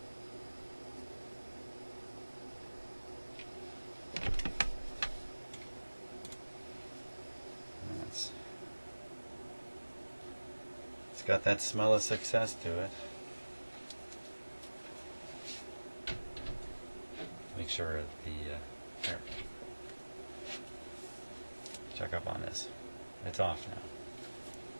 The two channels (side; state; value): both; inverted; correlation -1.00